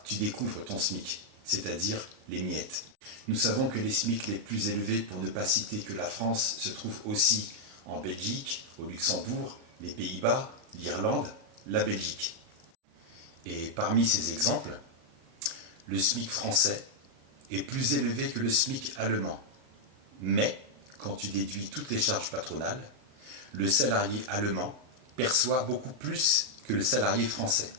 tu découvres ton SMIC, c'est-à-dire les miettes. Nous savons que les SMIC les plus élevés, pour ne pas citer que la France, se trouvent aussi en Belgique, au Luxembourg, les Pays-Bas, l'Irlande, la Belgique. Et parmi ces exemples, le SMIC français est plus élevé que le SMIC allemand. Mais, quand tu déduis toutes les charges patronales, le salarié allemand perçoit beaucoup plus que le salarié français.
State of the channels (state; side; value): late; left; 39 ms